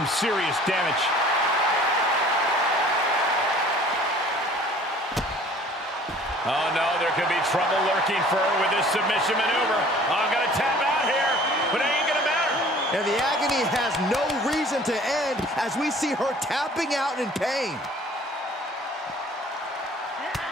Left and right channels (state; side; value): normal; both; correlation 0.51